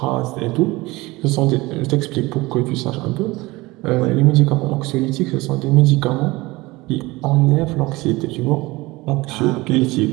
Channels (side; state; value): left; quieter; 21.3 dB